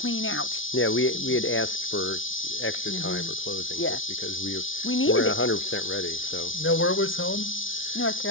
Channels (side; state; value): right; late; 0.57 ms